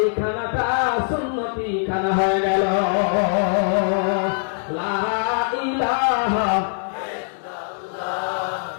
খানাটা সুন্নতি খানা হয়ে গেল লা ইলাহা ইল্লাল্লাহ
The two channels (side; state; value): right; silent; digital silence